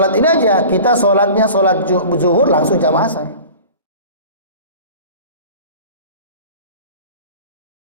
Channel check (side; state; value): both; inverted; correlation -0.40